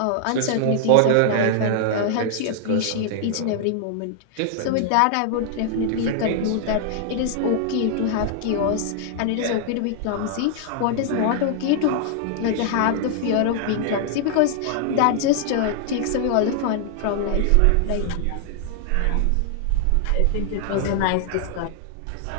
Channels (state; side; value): different; both; correlation 0.00